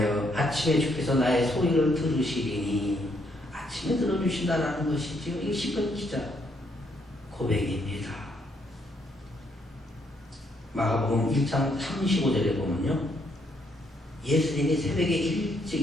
아침에 주께서 나의 소리를 들으시리니 아침에 들어주신다는 것이지요. 이 시편 기자 고백입니다. 마가복음 1장 35절에 보면요, 예수님이 새벽에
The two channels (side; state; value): both; normal; correlation 0.73